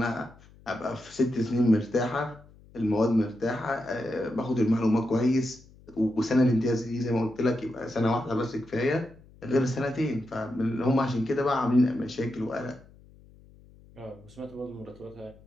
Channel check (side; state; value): left; noise; hum, 25 dB below the sound